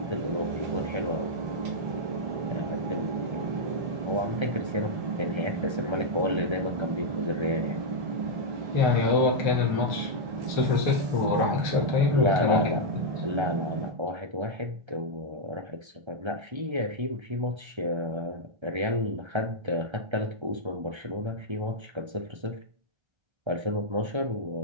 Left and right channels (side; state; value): left; late; 1.3 ms